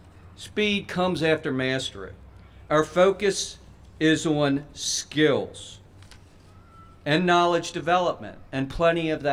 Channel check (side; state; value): both; identical; correlation 1.00